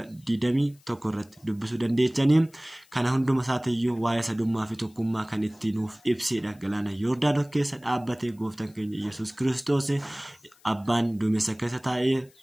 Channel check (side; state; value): left; noise; hiss, 30 dB below the sound